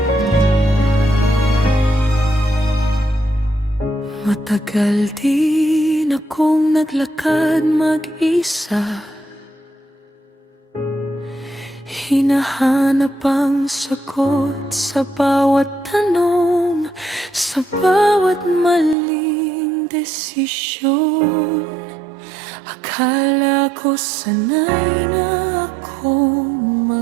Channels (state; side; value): drops out; left; at 18.9 s